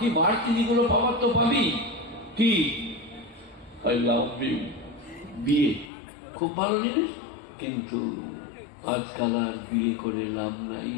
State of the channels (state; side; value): drops out; right; at 5.9 s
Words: বাড়তি যেগুলো পাওয়ার তো পাবি। কি আই লাভ ইউ, বিয়ে খুব ভালো জিনিস, কিন্তু আজকাল আর বিয়ে করে লাভ নাই,